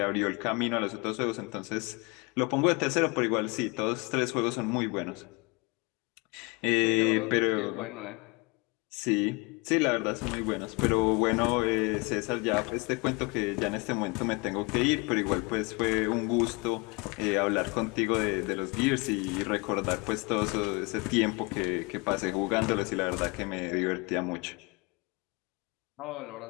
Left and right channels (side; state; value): right; quieter; 28.3 dB